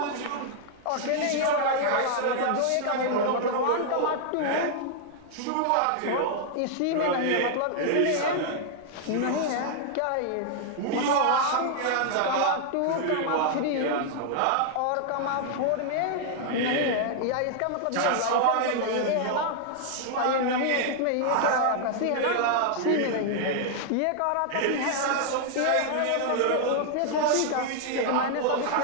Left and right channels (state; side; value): different; both; correlation -0.01